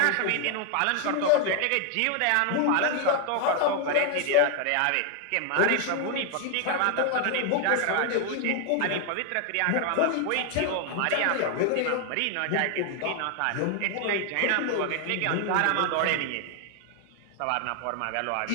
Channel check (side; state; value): both; different; correlation 0.00